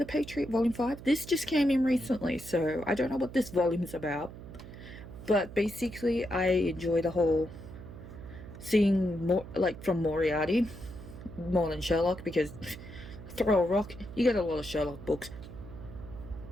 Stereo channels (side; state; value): right; noise; hum, 14 dB below the sound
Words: Patriot Volume 5. This just came in recently, so I don't know what this volume is about. But basically, I enjoy the whole seeing more, like, from Moriarty, more than Sherlock, because throw a rock, you get a lot of Sherlock books.